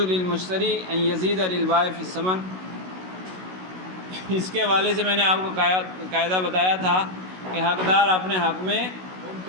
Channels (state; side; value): late; left; 16 ms